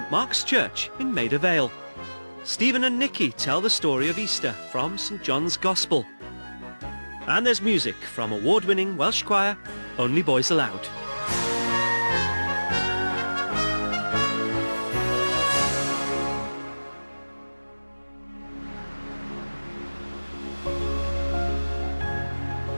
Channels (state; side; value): inverted; both; correlation -1.00